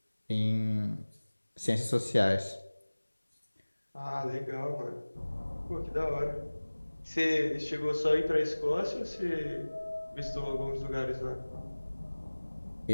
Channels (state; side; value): inverted; both; correlation -1.00